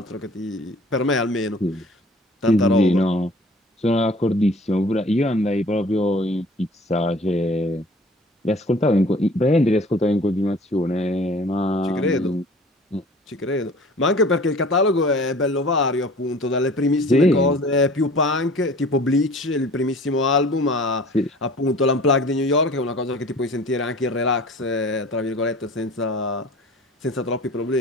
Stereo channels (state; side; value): normal; both; correlation 0.47